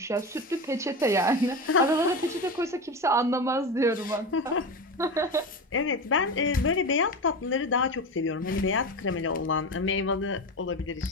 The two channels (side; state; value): both; normal; correlation 0.22